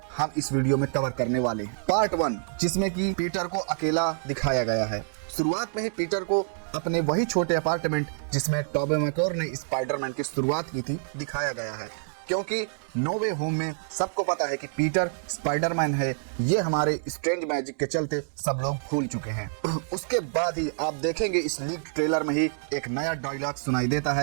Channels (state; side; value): silent; left; digital silence